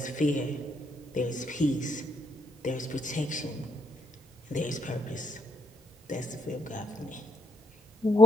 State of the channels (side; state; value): both; normal; correlation 0.74